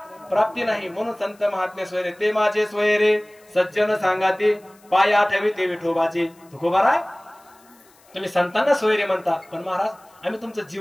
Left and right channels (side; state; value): left; noise; hiss, 30 dB below the sound